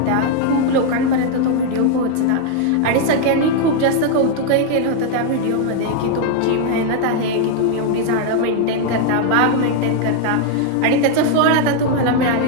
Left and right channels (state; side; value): different; both; correlation 0.00